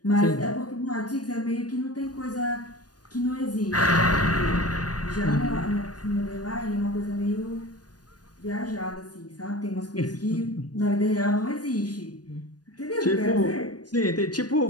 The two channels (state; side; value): late; right; 0.69 ms